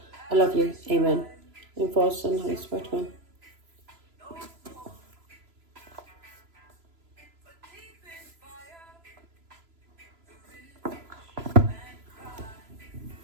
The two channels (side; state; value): left; late; 3.0 ms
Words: I love you, amen. And for the Son, Holy Spirit, amen.